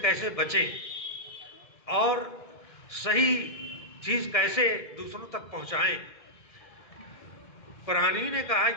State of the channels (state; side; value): late; right; 2.1 ms